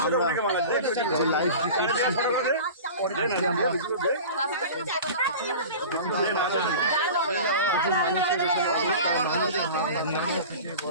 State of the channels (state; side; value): inverted; both; correlation -0.36